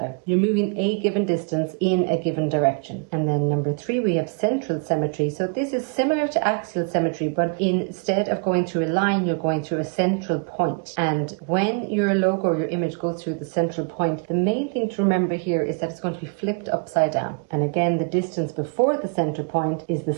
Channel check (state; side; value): quieter; left; 37.4 dB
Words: You're moving a given distance in a given direction. And then number 3, we have central symmetry. So this is similar to axial symmetry, but instead of going through a line, you're going through a central point. And when your logo or your image goes through the central point, the main thing to remember here is that it's going to be flipped upside down. And again, the distance before the central point is